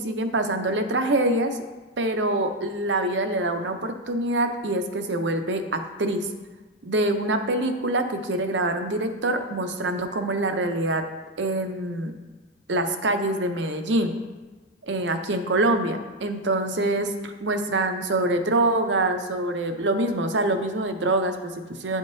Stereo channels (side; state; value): both; normal; correlation 0.04